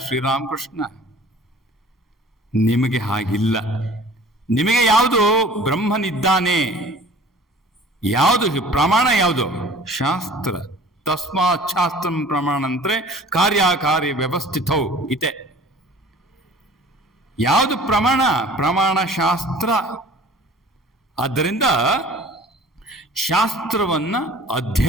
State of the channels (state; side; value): normal; both; correlation 0.47